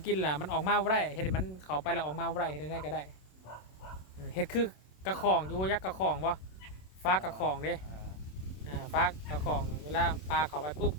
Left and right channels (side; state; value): right; late; 27 ms